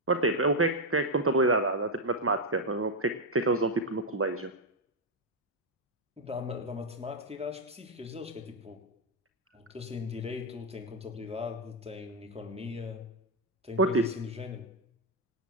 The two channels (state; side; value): normal; both; correlation 0.01